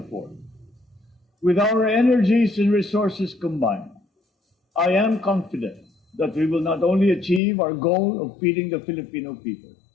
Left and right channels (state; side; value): drops out; right; at 7.4 s